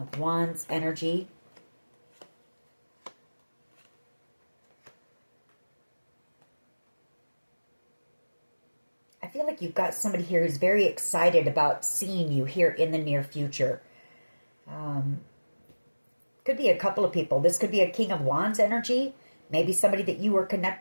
Wands energy. I feel like you've got somebody here who's very excited about seeing you here in the near future. Could be a couple of people. This could be a King of Wands energy. Maybe somebody that you were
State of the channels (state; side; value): inverted; both; correlation -1.00